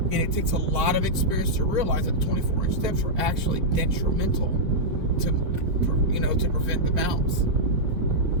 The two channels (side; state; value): left; late; 4.5 ms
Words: it takes a lot of experience to realize that 24-inch steps are actually detrimental to prevent the bounce.